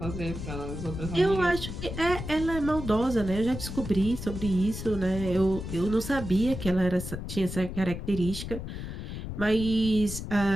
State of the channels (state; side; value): noise; left; rumble, 7 dB below the sound